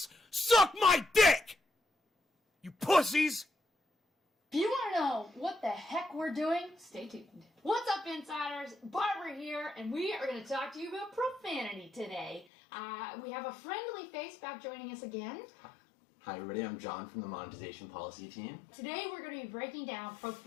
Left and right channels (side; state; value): right; drops out; at 12.5 s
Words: Suck my dick! You pussies! you want to know what the heck we're doing, stay tuned. What's up, insiders? Barbara here, and we are going to talk to you about profanity today. We have a friendly face back joining us again. Hi everybody, I'm John from the Monetization Policy Team. Today we're going to be breaking down